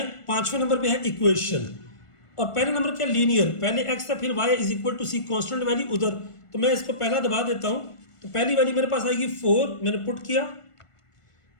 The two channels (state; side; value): late; right; 1.5 ms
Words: 5वें नंबर पे है इक्वेशन, और पहले नंबर क्या लीनियर, पहले x है फिर y is equal to C constant value उधर, तो मैं इसको पहला दबा देता हूँ। तो पहली वैल्यू मेरे पास आएगी 4, मैंने पुट किया,